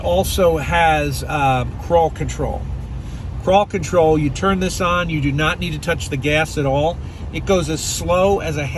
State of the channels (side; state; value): both; identical; correlation 1.00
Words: has crawl control. Crawl control, you turn this on, you do not need to touch the gas at all. It goes as slow as a